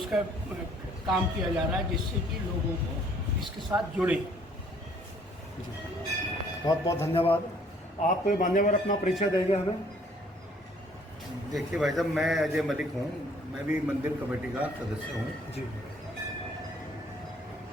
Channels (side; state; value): both; normal; correlation 0.60